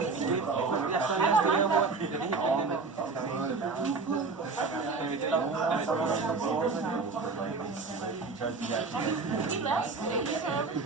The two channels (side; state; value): left; quieter; 4.3 dB